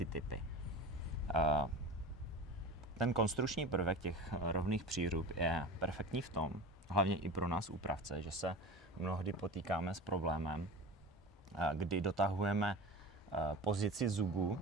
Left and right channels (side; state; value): both; normal; correlation 0.32